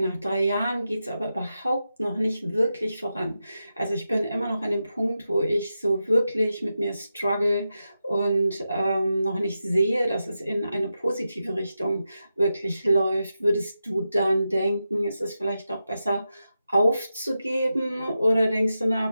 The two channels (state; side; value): inverted; both; correlation -0.89